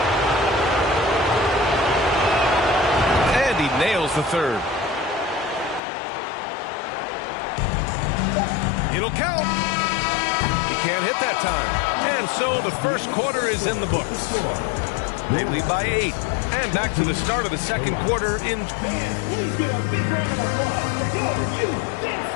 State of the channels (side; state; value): right; drops out; at 5.8 s